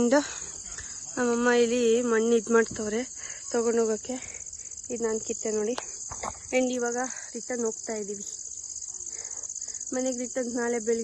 ನಮ್ಮಮ್ಮ ಇಲ್ಲಿ ಮಣ್ಣು ಇದು ಮಾಡ್ತವ್ರೆ ತೊಗೊಂಡೋಗೋಕ್ಕೆ. ಇದು ನಾನು ಕಿತ್ತೆ ನೋಡಿ. ಆ್ಯಂಡ್ ಇವಾಗ ರಿಟರ್ನ್ ಹೋಗ್ತಾ ಇದ್ದೀವಿ ಮನೆಗೆ. ರಿಟರ್ನ್ ನಾಳೆ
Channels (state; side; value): identical; both; correlation 1.00